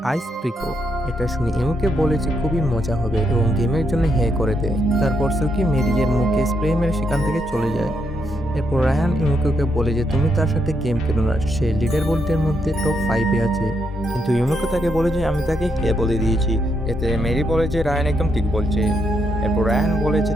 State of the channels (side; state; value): both; normal; correlation 0.79